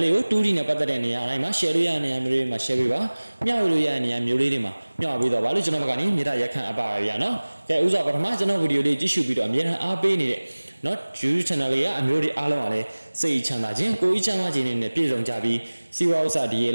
လေးကို2D နဲ့ပတ်သက်တဲ့နေရာတိုင်းမှာ share လို့ရတဲ့နေရာမျိုးတွေမှာ share ပေးပါမျှဝေလို့ရတဲ့နေရာမျိုးလေးတွေမှာမျှဝေပေးတော့ပါလို့ကျွန်တော်ဘက်ကနေမြေတားရက်ခံအပ်ပါရဗျာနော်ကဲဥစွာပထမကျွန်တော်ဗီဒီယိုလေးကြည့်ရှုပြီးတော့အမြဲတမ်းအားပေးနေတဲ့နော် YouTube channel လေးကအမျိုးတွေအားလုံးကလည်းစိတ်ချမ်းသာခြင်းကိုယ်ကြီးချမ်းသာခြင်းနဲ့ပြည့်စုံကြပြီးစီဝါဥစ္စာဒီရ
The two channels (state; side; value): inverted; both; correlation -1.00